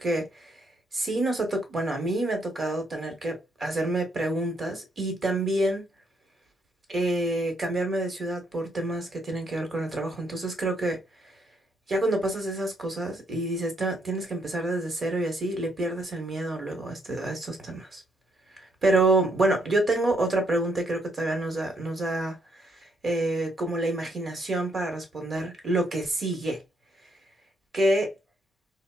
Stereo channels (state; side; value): normal; both; correlation 0.73